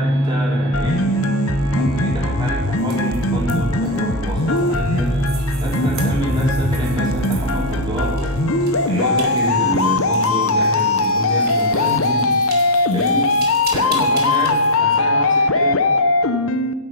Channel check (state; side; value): normal; both; correlation 0.00